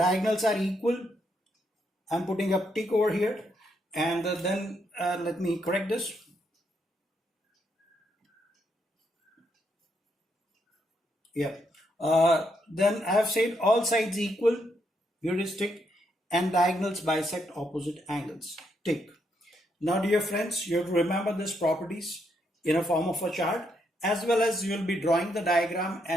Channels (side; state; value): both; normal; correlation 0.77